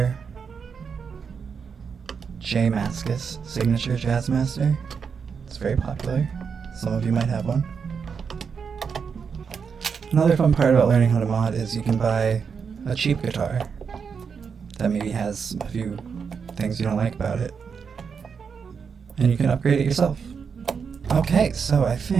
J. Mascis signature Jazzmaster. It's very popular. Some of you might have one. Another fun part about learning how to mod is you can buy a cheap guitar that maybe has a few things you don't like about it, and you can upgrade it yourself. Okay, so I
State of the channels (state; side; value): quieter; left; 6.2 dB